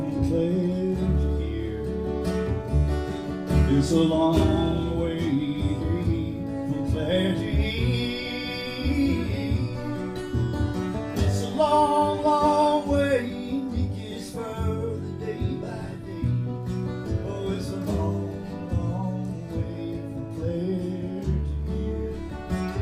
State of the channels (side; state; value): both; identical; correlation 1.00